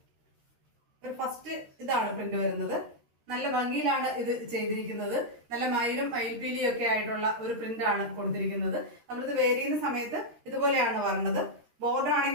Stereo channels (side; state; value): left; late; 13 ms